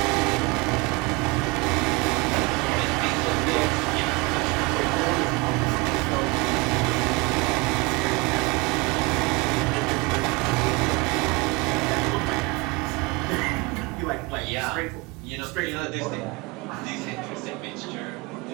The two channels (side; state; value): left; quieter; 26.0 dB